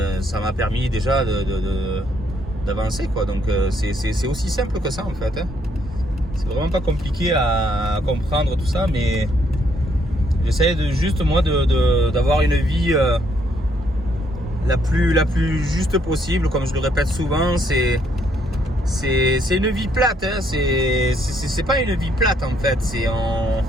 ça m'a permis déjà d'avancer, quoi. Donc c'est aussi simple que ça en fait, hein. C'est vraiment pas compliqué à comprendre tout ça, mais j'essaie juste moi d'avoir une vie la plus juste possible. Comme je le répète souvent, c'est une vie plate, hein. C'est pas une vie plate en fait, c'est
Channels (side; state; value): both; normal; correlation 0.70